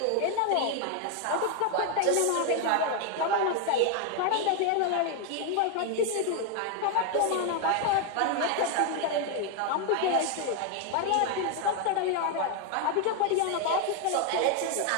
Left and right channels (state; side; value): different; both; correlation 0.01